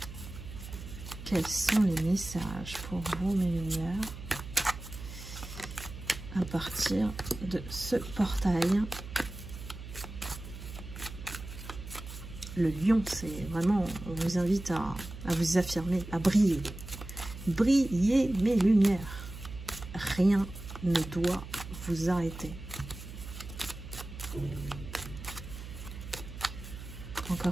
Quels sont les messages pour vous, mes lumières, à partir de ce portail? Le lion, c'est vraiment, on vous invite à vous affirmer, à briller. Brillez, mes lumières. Rien ne doit vous arrêter.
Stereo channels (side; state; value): right; noise; hum, 12 dB below the sound